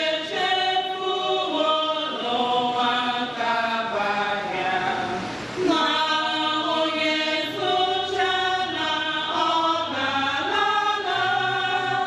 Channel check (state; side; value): identical; both; correlation 1.00